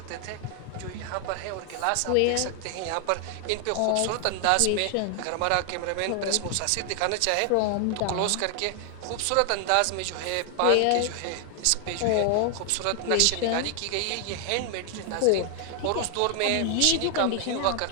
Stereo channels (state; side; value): different; both; correlation 0.00